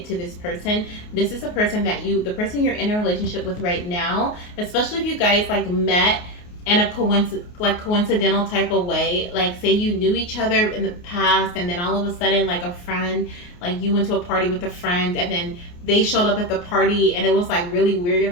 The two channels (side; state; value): right; late; 28 ms